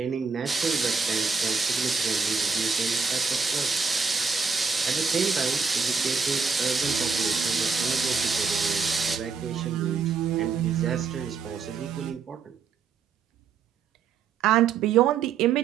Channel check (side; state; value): left; quieter; 5.5 dB